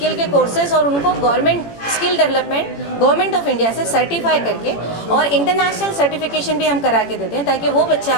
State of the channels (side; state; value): right; late; 18 ms